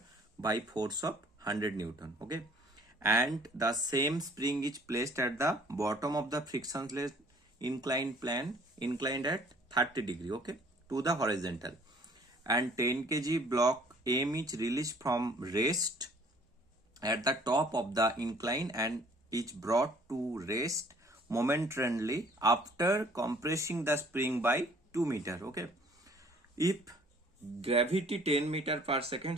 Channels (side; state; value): both; normal; correlation 0.56